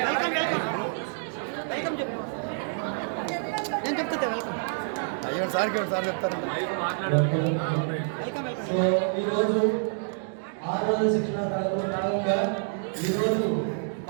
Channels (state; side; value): silent; left; digital silence